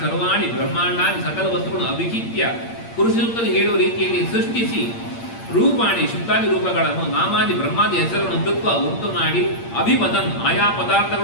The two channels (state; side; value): late; right; 8.7 ms